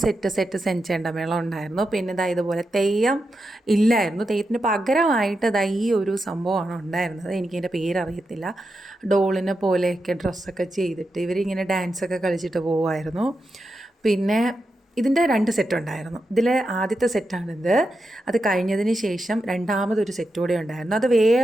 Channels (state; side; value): normal; both; correlation 0.88